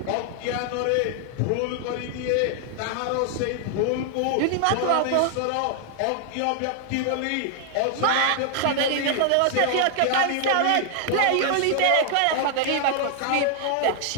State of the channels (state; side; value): different; both; correlation 0.00